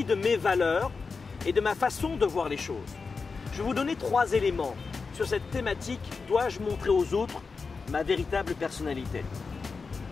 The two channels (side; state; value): right; quieter; 4.7 dB